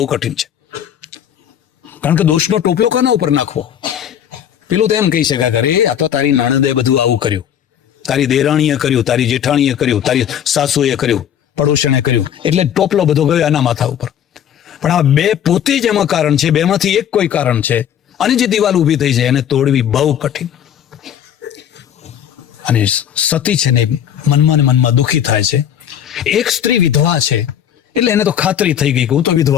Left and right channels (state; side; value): quieter; right; 9.6 dB